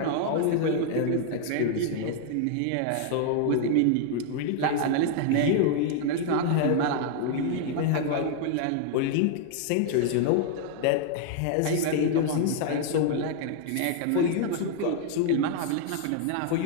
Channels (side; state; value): both; different; correlation 0.00